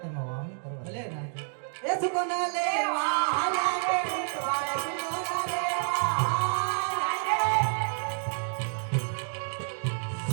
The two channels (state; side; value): silent; left; digital silence